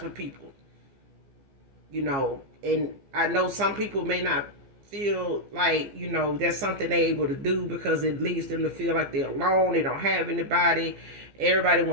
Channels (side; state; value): left; late; 14 ms